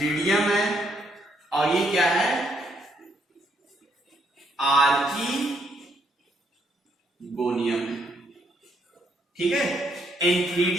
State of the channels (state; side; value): normal; both; correlation 0.73